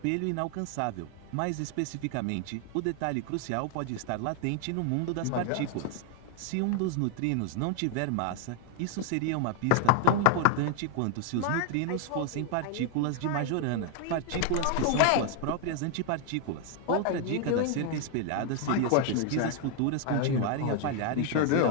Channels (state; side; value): different; both; correlation 0.00